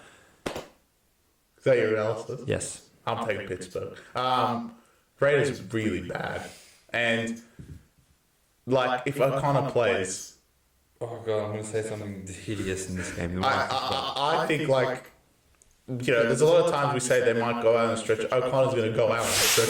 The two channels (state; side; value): identical; both; correlation 1.00